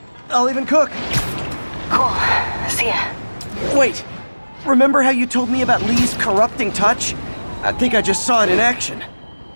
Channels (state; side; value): inverted; both; correlation -1.00